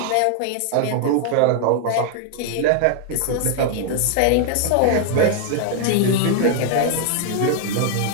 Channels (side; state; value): both; different; correlation 0.00